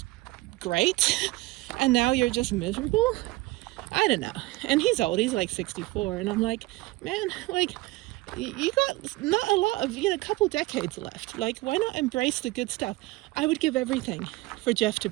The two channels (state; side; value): quieter; left; 20.3 dB